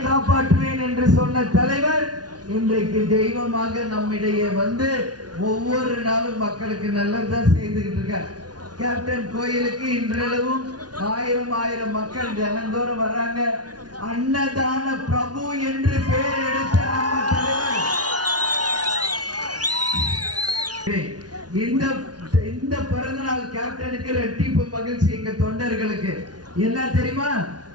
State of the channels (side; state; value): left; late; 0.69 ms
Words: காப்பாற்றுவேன் என்று சொன்ன தலைவர் இன்றைக்கு தெய்வமாக நம்மிடையே வந்து ஒவ்வொரு நாளும் மக்களுக்கு நல்லதான் செய்துகிட்டு இருக்கார். கேப்டன் கோயிலுக்கு இன்றளவும் 1000 மக்கள் தினந்தோறும் வர்றாங்க. அன்னதான பிரபு என்று பெயர் எடுத்த நம்ம தலைவர் இந்த பிறந்தநாள் கேப்டனுக்கு ரெட்டிப்பு மகிழ்ச்சி. எங்க தொண்டர்களுக்கு என்ன தெரியுமா?